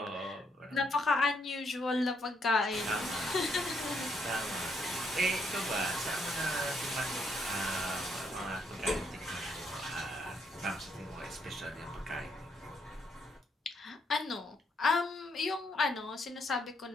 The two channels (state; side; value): normal; both; correlation 0.74